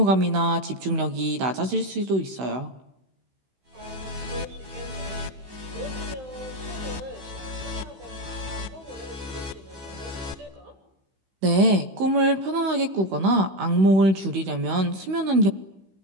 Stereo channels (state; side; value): late; left; 16 ms